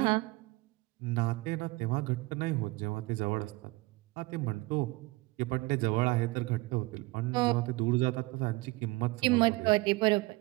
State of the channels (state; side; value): quieter; left; 22.9 dB